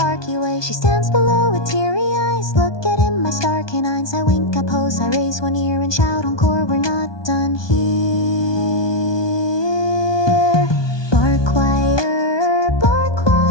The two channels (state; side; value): late; right; 1.2 ms